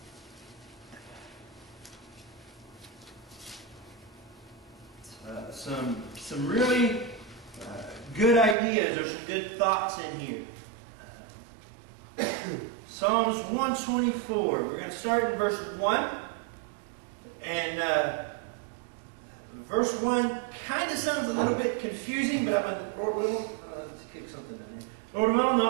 Some really good ideas or some good thoughts in here. Psalms 124. We're going to start in verse 1. And verse 1 kind of sounds a little bit confusing, but I'm going to, Lord willing, let's kick something in here. Lord willing,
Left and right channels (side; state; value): left; drops out; at 8.6 s